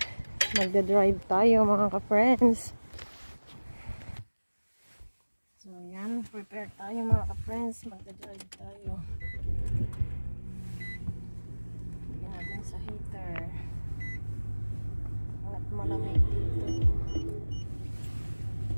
Magda-drive tayo mga ka-friends. So, yan. Prepare tayo mga ka-friends. Magda-drive tayo. Lagyan natin sa heater. At malamig dito.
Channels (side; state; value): both; inverted; correlation -1.00